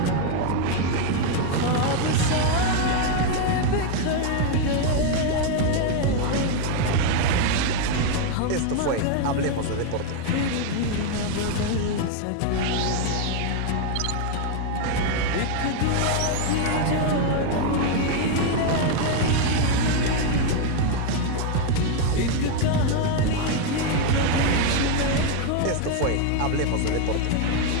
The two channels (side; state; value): both; different; correlation 0.01